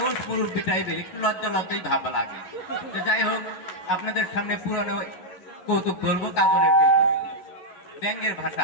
মুরব্বী টাইপের একটু লজ্জা লজ্জাই ভাবা লাগে। তো যাই হোক, আপনাদের সামনে পুরানো কৌতুক বলবো, কাজলের কৌতুক। ব্যাঙের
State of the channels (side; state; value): right; late; 11 ms